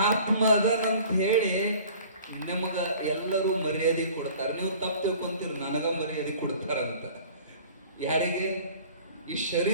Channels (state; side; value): inverted; both; correlation -0.47